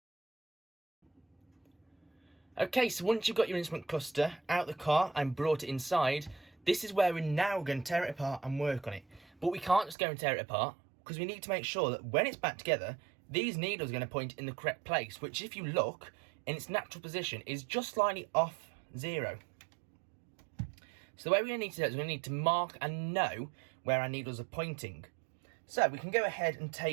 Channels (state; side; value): drops out; left; at 10.0 s